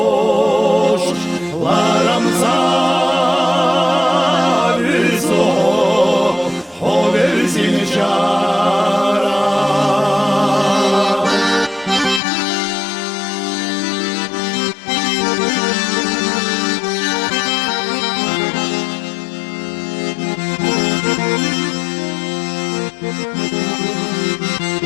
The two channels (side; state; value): right; drops out; at 12.2 s